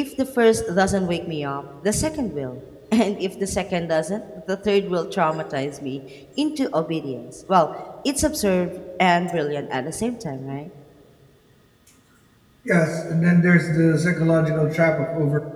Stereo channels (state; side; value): identical; both; correlation 1.00